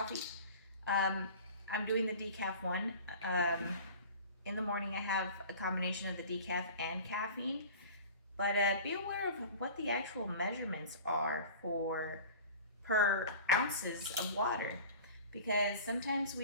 I'm doing the decaf one. In the morning I have a combination of the decaf and caffeine. But be aware of what the actual measurements are for per ounces of water, because sometimes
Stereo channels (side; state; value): both; inverted; correlation -0.40